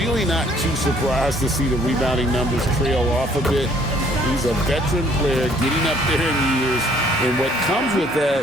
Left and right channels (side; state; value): both; normal; correlation 0.61